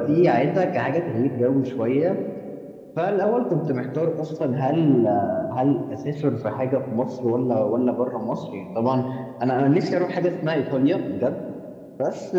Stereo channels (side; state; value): both; identical; correlation 1.00